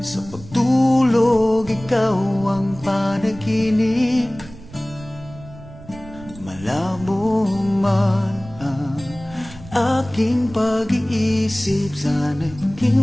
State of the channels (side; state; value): right; noise; rumble, 18 dB below the sound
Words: sa pagtulog ikaw ang panaginip. Malabo man ang aking pag-iisip, sana'y